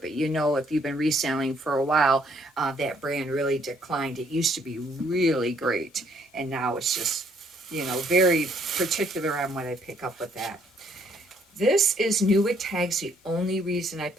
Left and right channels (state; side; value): normal; both; correlation 0.67